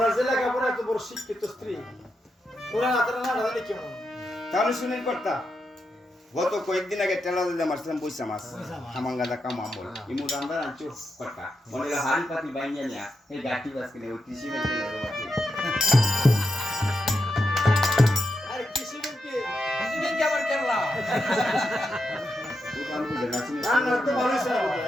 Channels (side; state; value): both; normal; correlation 0.86